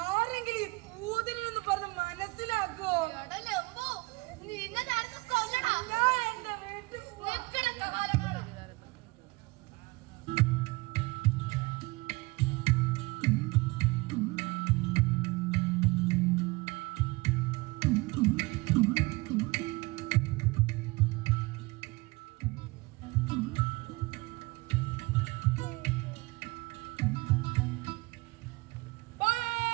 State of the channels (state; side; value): quieter; left; 23.9 dB